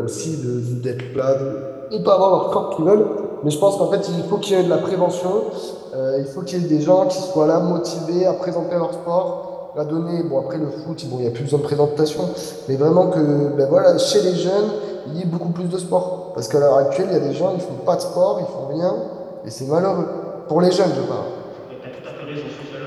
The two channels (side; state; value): both; identical; correlation 1.00